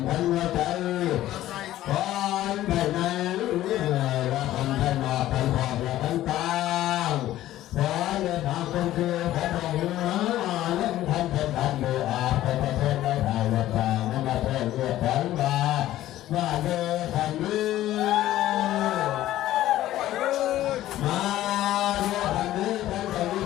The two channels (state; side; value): quieter; right; 14.1 dB